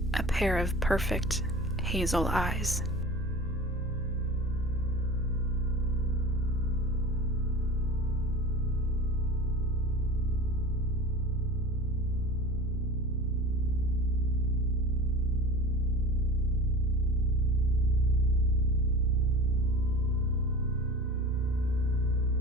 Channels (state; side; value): normal; both; correlation 0.36